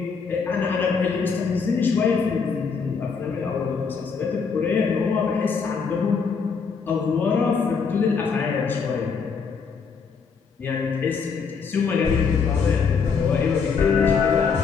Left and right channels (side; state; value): right; quieter; 5.5 dB